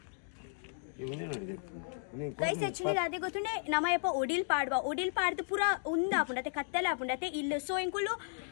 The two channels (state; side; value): silent; right; digital silence